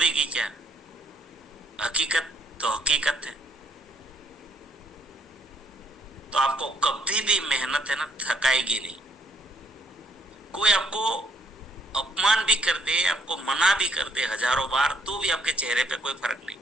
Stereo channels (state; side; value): normal; both; correlation 0.67